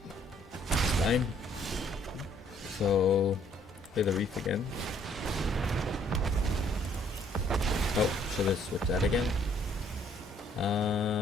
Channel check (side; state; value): both; normal; correlation 0.63